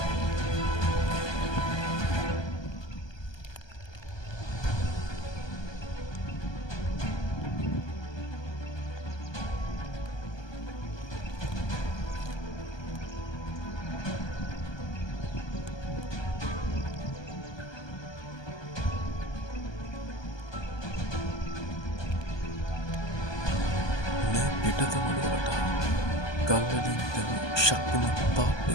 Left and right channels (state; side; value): late; right; 1.2 ms